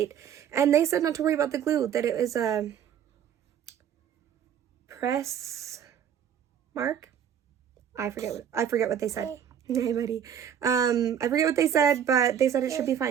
And they said not to worry about the glue, that it was a press mark. I forget what they said. Hey buddy. I forget what they said, but they said it should be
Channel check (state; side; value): quieter; left; 8.9 dB